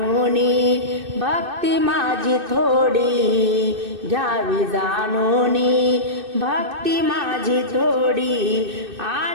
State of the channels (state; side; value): late; left; 2.6 ms